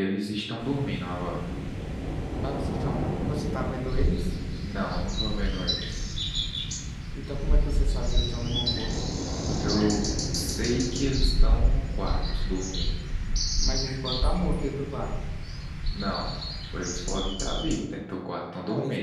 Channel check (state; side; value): identical; both; correlation 1.00